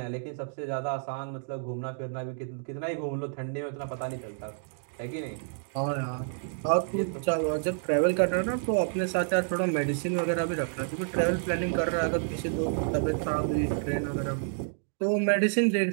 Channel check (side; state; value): left; silent; digital silence